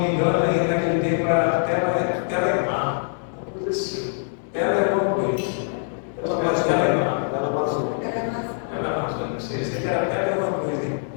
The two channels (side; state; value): right; silent; digital silence